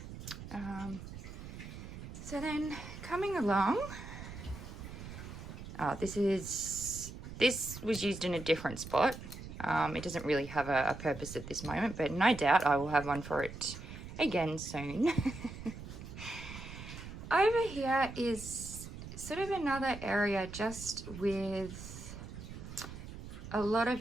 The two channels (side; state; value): right; noise; rumble, 11 dB below the sound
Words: So then coming along, this was used in a different spot. It doesn't really have a purpose at this moment, but no doubt I will have one for it again soon. Over here is sort of another area just with a lot